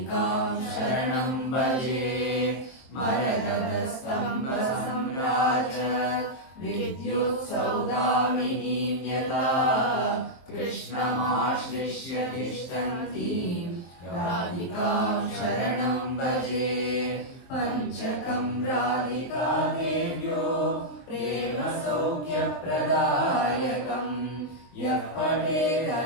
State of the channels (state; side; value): late; right; 23 ms